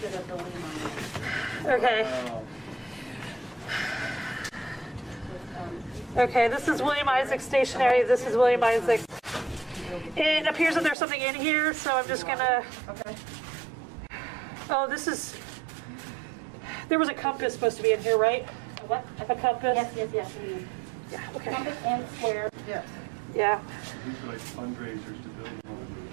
Okay. Okay, this is William Isaac stationery. This is William Isaac. It appears that there's something in here, so I'm just gonna. Okay. Oh, this is. There was a compass supposed to be in here, right? What? A compass? Yes. Yeah, okay. Compass and square. Yes. Yeah. These are like fundraisers to build one.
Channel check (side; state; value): left; drops out; at 11.0 s